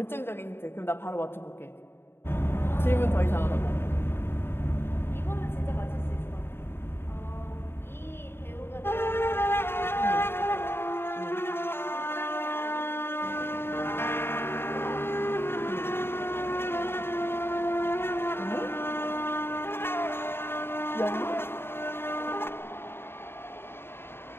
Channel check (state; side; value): late; right; 0.11 ms